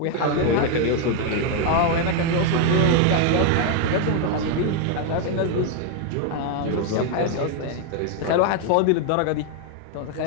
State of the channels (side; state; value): both; different; correlation 0.01